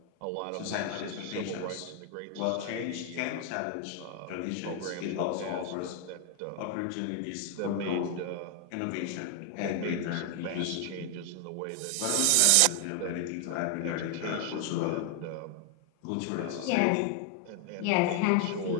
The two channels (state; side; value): different; both; correlation 0.00